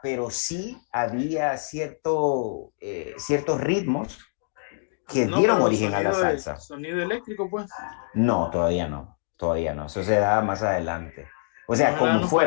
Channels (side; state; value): right; silent; digital silence